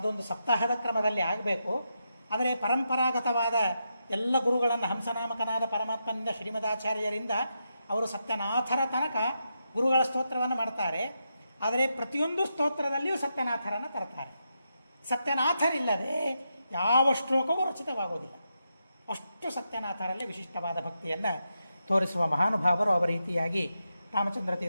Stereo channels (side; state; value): both; inverted; correlation -0.85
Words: ಸಪ್ತಾಹದ ಕ್ರಮದಲ್ಲಿ ಆಗಬೇಕು. ಆದರೆ ಪರಂಪರಾಗತವಾದ ಎಲ್ಲ ಗುರುಗಳನ್ನು ಹಂಸನಾಮಕನಾದ ಪರಮಾತ್ಮನಿಂದ ಶ್ರೀಮದಾಚಾರ್ಯರಿಂದ ಅವರು ಸತ್ಯನಾಥರ ತನಕ ಗುರುಗಳ ಸ್ತೋತ್ರವನ್ನು ಮಾಡ್ತಾರೆ. ಆದರೆ ಪ್ರತಿಯೊಂದು ಸ್ತೋತ್ರದಲ್ಲಿಯೂ ಸತ್ಯನಾಥರನ್ನು ತರ್ತಾರೆ. ಸತ್ಯನಾಥರಿಲ್ಲದೆ ಯಾವ ಶ್ಲೋಕವೂ ರಚಿತವಾಗೋದಿಲ್ಲ. ಅಷ್ಟು ಸತ್ಯನಾಥರಲ್ಲಿ ವಿಶಿಷ್ಟವಾದ ಭಕ್ತಿಯನ್ನು ತೋರಿಸುವ ಮಹಾನುಭಾವರು ಅವರ ರೀತಿಯಾಗಿ ರಾಮಚಂದ್ರ